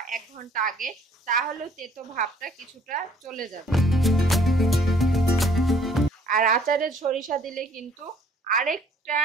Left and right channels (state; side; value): normal; both; correlation 0.59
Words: 1 ঘন্টা আগে, তাহলেও তেতো ভাবটা কিছুটা চলে যাবে। আর আচারের সরিষা দিলে কিন্তু আরেকটা